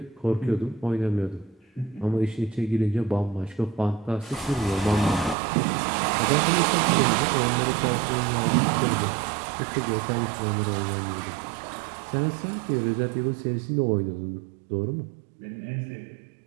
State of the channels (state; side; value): drops out; left; at 5.4 s